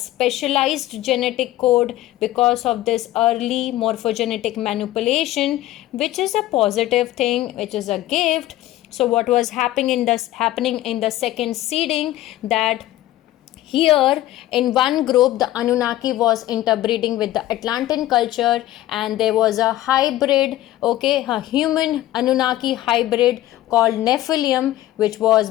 genetic code because of this early morphogenetic manipulation, which is a positive thing, which is a gift. So what was happening in the second seeding, that here in one group the Anunnaki was interbreeding with the Atlantean culture, and there was a hybrid, okay, a human Anunnaki hybrid called Nephilim, which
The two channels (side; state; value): right; quieter; 14.9 dB